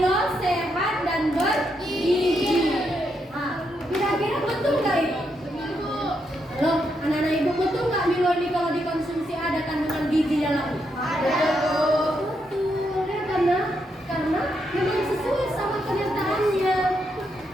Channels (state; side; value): normal; both; correlation 0.80